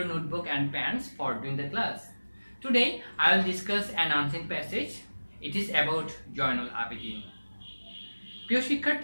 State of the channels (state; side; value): inverted; both; correlation -1.00